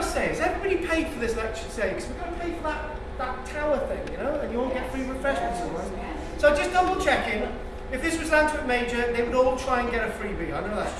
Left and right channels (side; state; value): both; identical; correlation 1.00